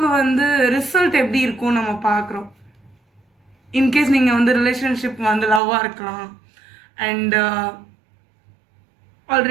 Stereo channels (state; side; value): drops out; left; at 5.6 s